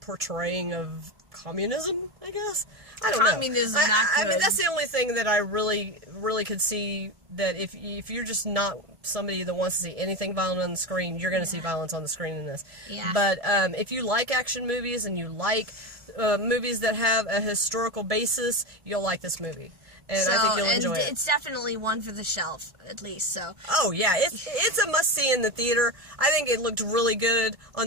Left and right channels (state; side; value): late; left; 1.5 ms